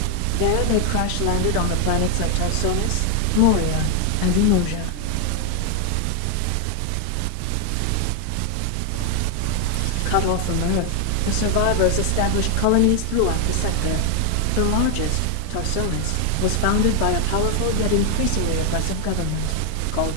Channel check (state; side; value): different; both; correlation 0.00